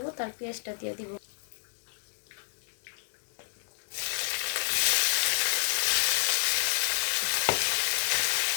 তার পেঁয়াজটা দিয়ে দিব।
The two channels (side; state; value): right; silent; 58 dB below the other